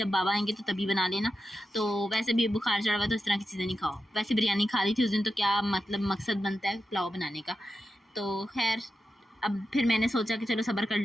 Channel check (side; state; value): both; normal; correlation 0.89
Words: बाबा आएंगे तो तभी बना लेना। तो वैसे भी बुखार चढ़ा हुआ तो इस तरह की चीज़ें नहीं खाओ। वैसे बिरयानी खा ली थी उस दिन, तो क्या मतलब मकसद बनता है पुलाव बनाने का। तो खैर अब फिर मैंने सोचा कि चलो सब्र कर